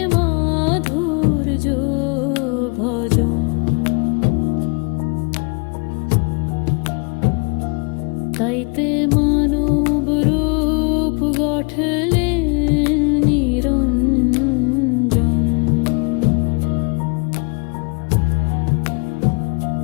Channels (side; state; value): right; quieter; 34.7 dB